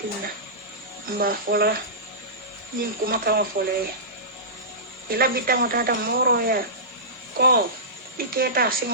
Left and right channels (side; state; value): both; normal; correlation -0.20